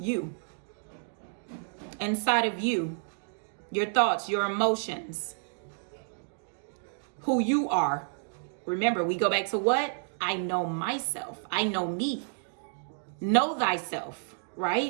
Inside of you, your thoughts, your emotions, who you are. Remember, we go back to what? I know myself. I know me. Know thyself,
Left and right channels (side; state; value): left; silent; digital silence